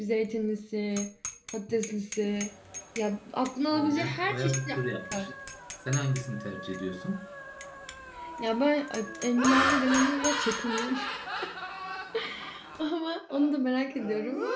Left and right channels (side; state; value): both; identical; correlation 1.00